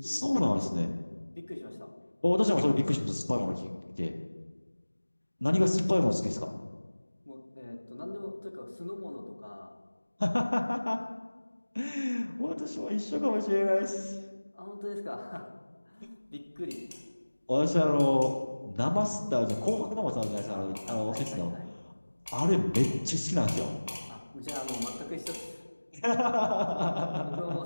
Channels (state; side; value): inverted; both; correlation -1.00